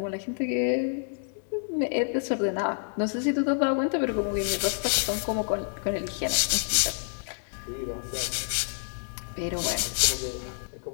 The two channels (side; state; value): right; silent; 59 dB below the other